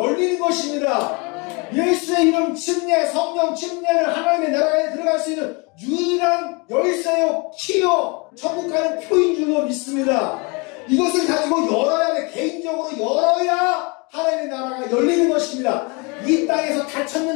것입니다. 예수의 이름 침례, 성령 침례를 하나님의 나라에 들어갈 수 있는 유일한 열쇠요, 키요, 천국 가는 표인 줄로 믿습니다. 이것을 가지고 열어야 돼. 개인적으로 열어야 하나님의 나라가 열리는 것입니다. 이 땅에서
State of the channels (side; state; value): right; quieter; 30.0 dB